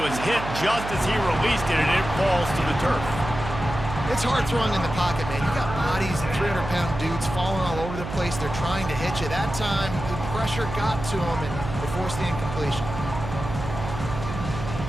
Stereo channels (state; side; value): noise; right; hum, 8 dB below the sound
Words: was hit just as he released it, and it falls to the turf. It's hard throwing in the pocket, man. You got bodies and 300-pound dudes falling all over the place. They're trying to hit you. That time, the pressure got to him, and they forced the incompletion.